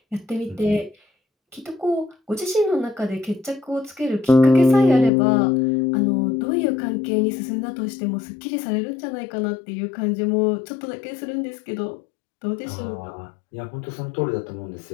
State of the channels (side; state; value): right; drops out; at 5.1 s